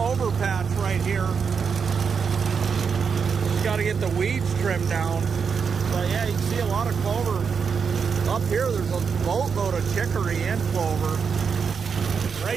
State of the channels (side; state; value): left; quieter; 6.1 dB